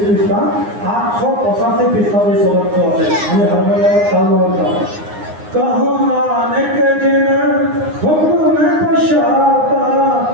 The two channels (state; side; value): late; left; 9.7 ms